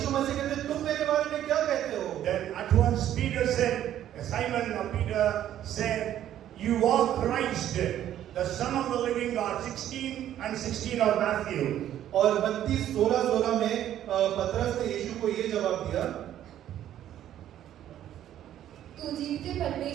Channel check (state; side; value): quieter; left; 11.5 dB